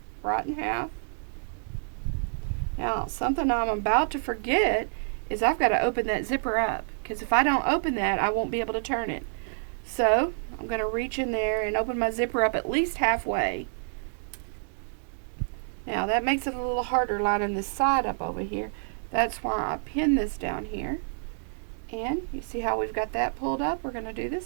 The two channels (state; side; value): silent; left; digital silence